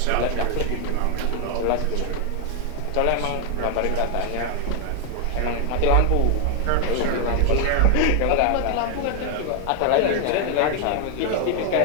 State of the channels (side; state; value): both; different; correlation 0.00